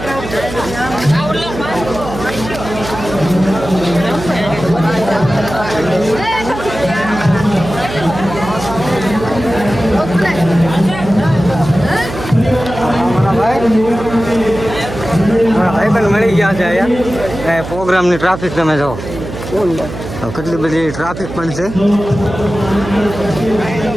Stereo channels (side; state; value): right; noise; hum, 10 dB below the sound